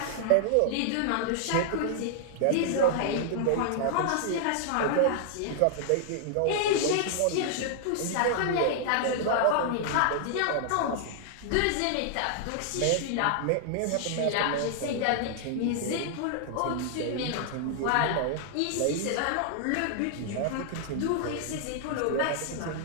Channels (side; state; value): both; different; correlation -0.01